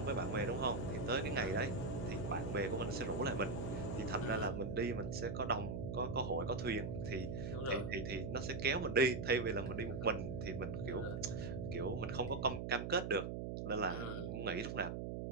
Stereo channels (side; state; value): right; noise; hum, 3 dB below the sound